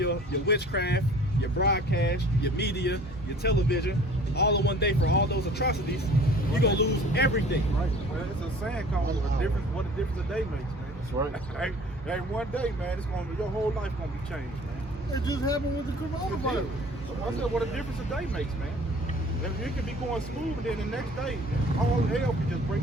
witchcraft, your broadcast, your media, your television, all in one day for all those atrocities, you're going to lose everything. Right. Well, it's a saying called what a difference a day makes, man. That's right. Hey, one day, man, it's going to your whole life going to be changed, man. It just happened with the coronavirus. I said, what a difference a day makes, man. If you can be going smooth, and then the next day, all hell can just break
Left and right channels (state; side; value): normal; both; correlation 0.48